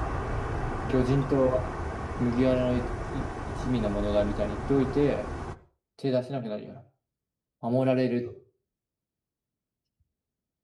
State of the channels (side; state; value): both; identical; correlation 1.00